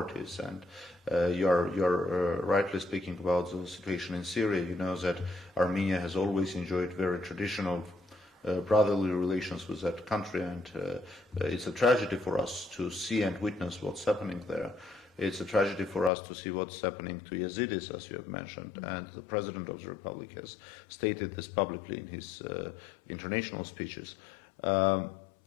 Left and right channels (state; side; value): drops out; right; at 16.1 s